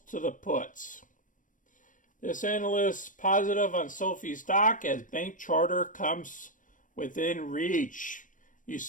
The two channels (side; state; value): right; late; 0.38 ms